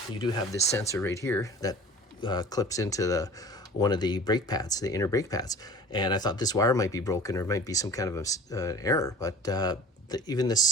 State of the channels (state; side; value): normal; both; correlation 0.42